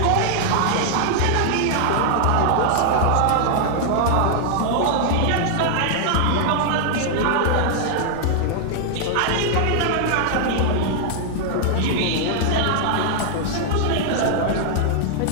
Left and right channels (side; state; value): both; different; correlation 0.00